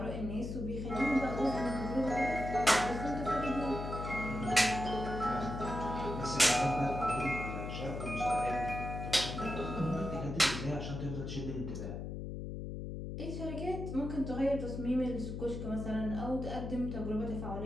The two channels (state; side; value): noise; left; hum, 6 dB below the sound